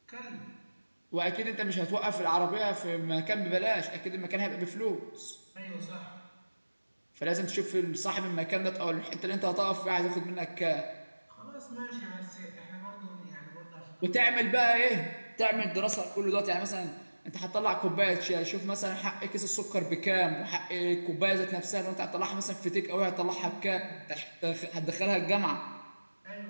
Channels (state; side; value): inverted; both; correlation -1.00